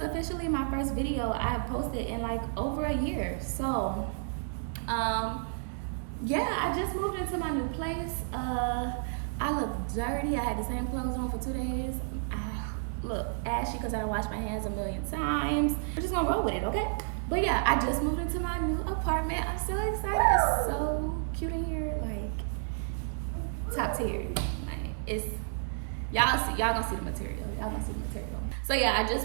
my first video I have posted in like over a year. So, yeah, I just moved into my new place. I look dirty. I had the same clothes on for 2 days. I look ashy because I don't wash my hands a million times. We're just gonna roll with it, okay? But yeah, I just moved into my new apartment. I'm so excited. It's so cute in here, like top tier. Like it's y'all gonna see the material. Y'all gonna see the material. So yeah, I just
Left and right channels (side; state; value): left; silent; digital silence